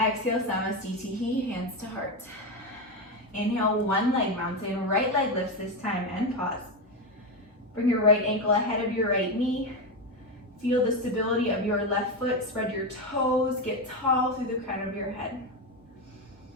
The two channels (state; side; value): normal; both; correlation 0.12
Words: Exhale, Samasthiti, hands to heart. Inhale, one leg mountain. Right leg lifts this time and pause. Bring your right ankle ahead of your right knee. Feel the stability of your left foot. Spread your toes. Get tall through the crown of your head.